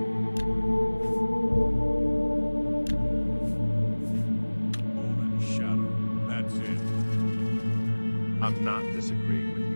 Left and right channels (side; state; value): both; inverted; correlation -1.00